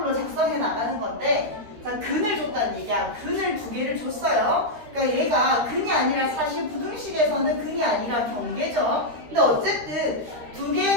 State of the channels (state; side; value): late; left; 12 ms